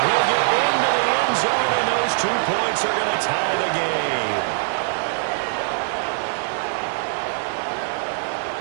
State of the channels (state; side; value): silent; left; digital silence